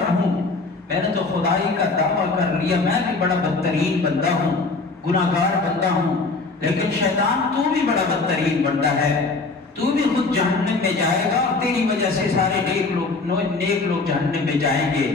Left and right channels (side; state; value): right; quieter; 3.8 dB